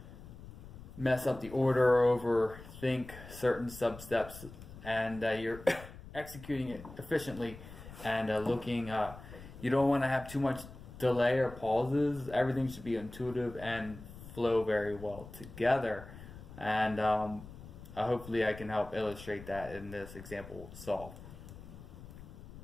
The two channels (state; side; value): noise; left; rumble, 15 dB below the sound